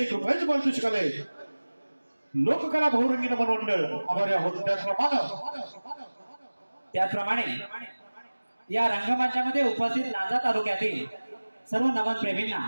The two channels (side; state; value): both; inverted; correlation -1.00